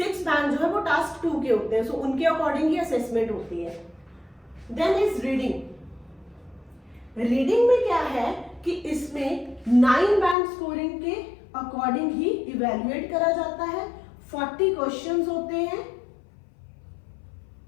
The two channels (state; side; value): drops out; right; at 10.4 s